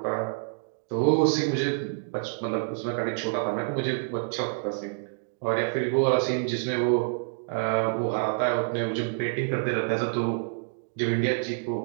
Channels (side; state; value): left; silent; digital silence